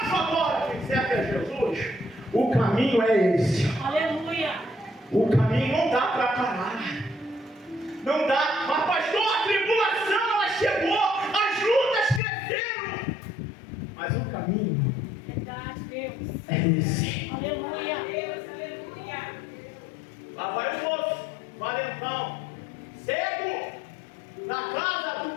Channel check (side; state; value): right; drops out; at 12.2 s